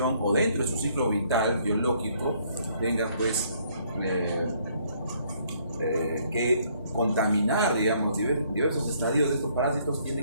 o dentro de su ciclo vital biológico tenga pues que contaminar, digamos, diversos estadios de estos parásitos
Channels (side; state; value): both; inverted; correlation -0.66